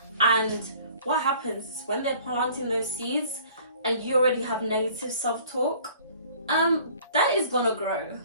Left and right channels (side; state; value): both; inverted; correlation -0.52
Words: And what happens is when they're planting those seeds and you already have negative self-talk, that is gonna grow.